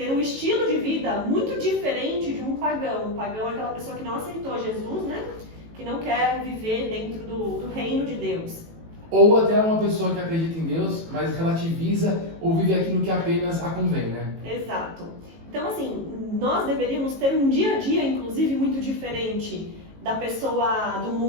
um estilo de vida muito diferente de um pagão. Um pagão é aquela pessoa que não aceitou Jesus, que não quer viver dentro do reino de Deus. Ou até uma pessoa que acredita em Deus, mas relativiza ou vive aquilo que apenas a convém, Exato. Então, assim, nós deveríamos ter um dia a dia, inclusive, muito diferente da pessoa do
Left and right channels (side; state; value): left; late; 18 ms